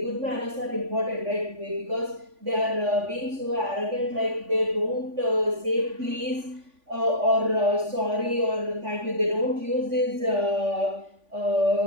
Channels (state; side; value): late; left; 3.5 ms